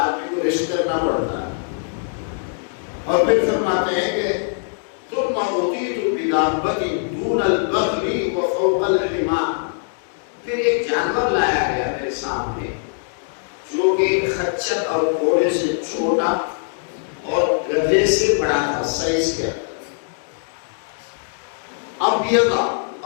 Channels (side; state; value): right; silent; digital silence